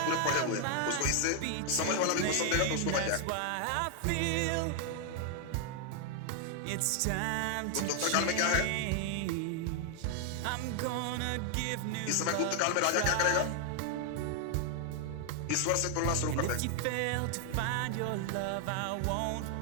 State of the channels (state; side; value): different; both; correlation 0.00